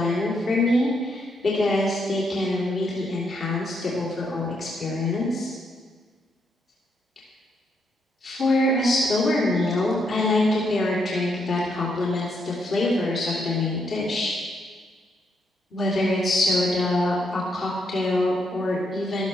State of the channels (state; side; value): normal; both; correlation 0.77